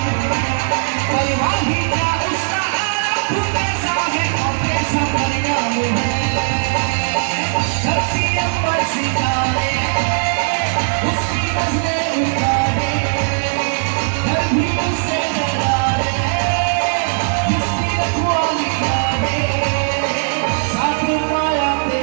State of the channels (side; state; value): left; silent; 62 dB below the other